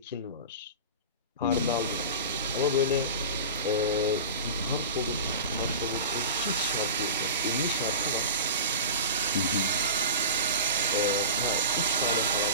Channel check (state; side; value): inverted; both; correlation -0.30